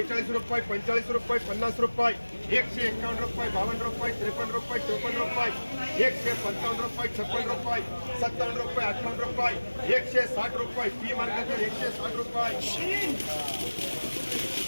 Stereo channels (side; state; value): both; inverted; correlation -1.00